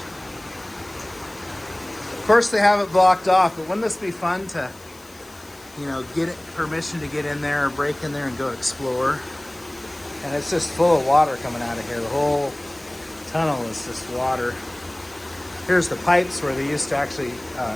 Of course they have it blocked off, but wouldn't this be fun to, get permission to get in there or break in there and go explore? And it's just full of water coming out of here. The whole tunnel is just water. Here's the pipes where they used to actually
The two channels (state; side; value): noise; left; hiss, 24 dB below the sound